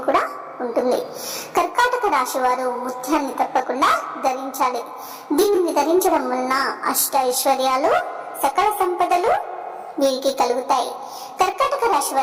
కూడా ఉంటుంది. కర్కాటక రాశి వారు ముత్యాన్ని తప్పకుండా ధరించాలి. దీనిని ధరించడం వలన అష్ట ఐశ్వర్యాలు, సకల సంపదలు వీరికి కలుగుతాయి. కర్కాటక రాశి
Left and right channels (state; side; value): identical; both; correlation 1.00